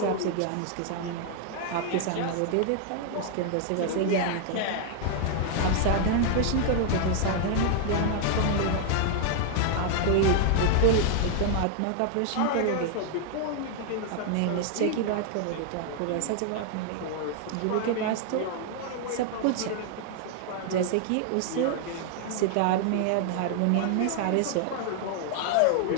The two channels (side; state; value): both; different; correlation 0.00